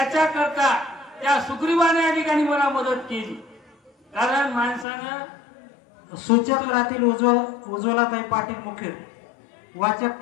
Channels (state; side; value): drops out; right; at 4.9 s